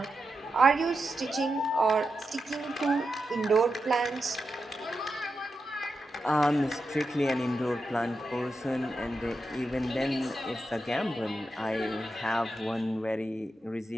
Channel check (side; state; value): both; normal; correlation 0.88